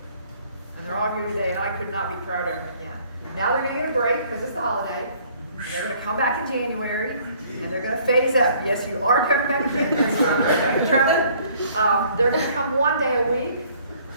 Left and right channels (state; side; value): inverted; both; correlation -0.59